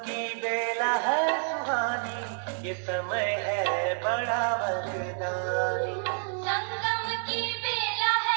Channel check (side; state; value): left; silent; 59 dB below the other